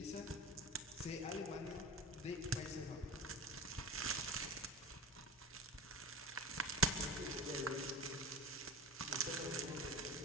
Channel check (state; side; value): normal; both; correlation 0.30